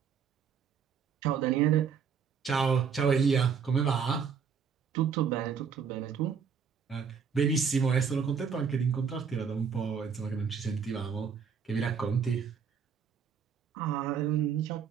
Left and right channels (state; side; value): quieter; left; 6.6 dB